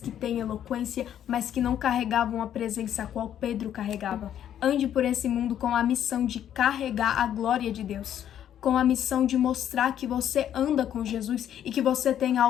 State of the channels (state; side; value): quieter; right; 10.3 dB